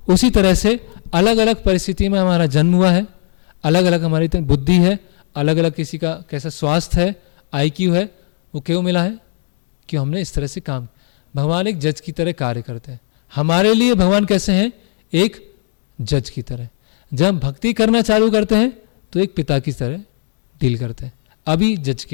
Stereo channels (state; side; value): silent; right; digital silence